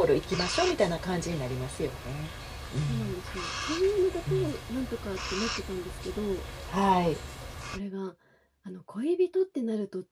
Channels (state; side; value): identical; both; correlation 1.00